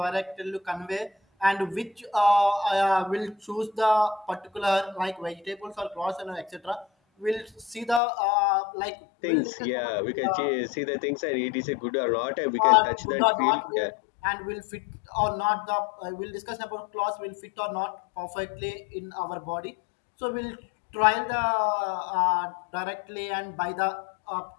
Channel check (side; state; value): right; drops out; at 8.0 s